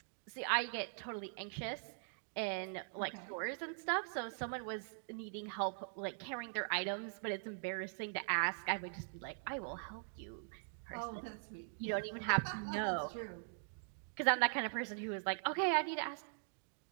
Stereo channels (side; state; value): left; silent; digital silence